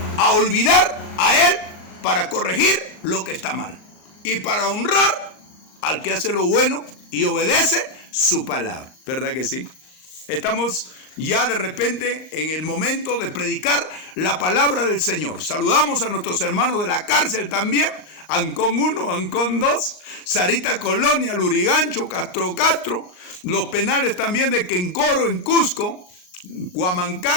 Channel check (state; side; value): late; right; 38 ms